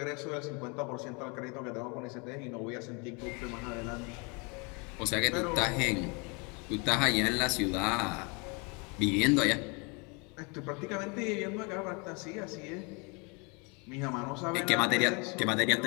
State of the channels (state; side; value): quieter; right; 31.4 dB